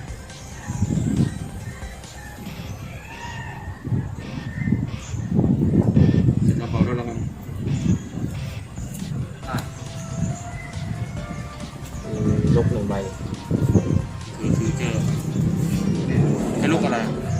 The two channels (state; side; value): identical; both; correlation 1.00